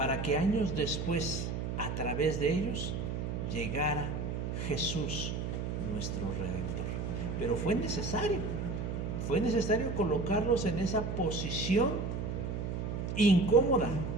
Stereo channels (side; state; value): right; noise; hum, 3 dB below the sound